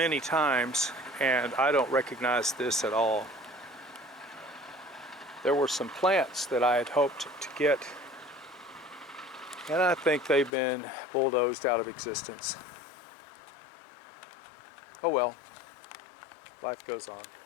times and I don't recognize this at all. There were some plants that I had hoped to get, and I think they've been bulldozed out of existence. Oh well, life goes on.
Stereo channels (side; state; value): right; drops out; at 10.5 s